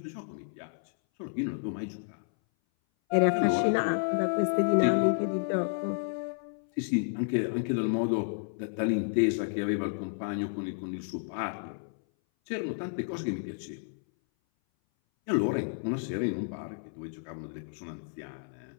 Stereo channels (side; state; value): right; silent; 57 dB below the other